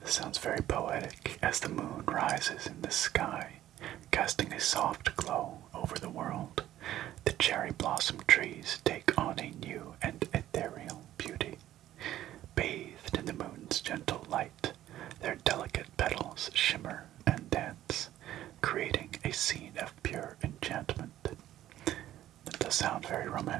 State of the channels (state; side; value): quieter; left; 13.1 dB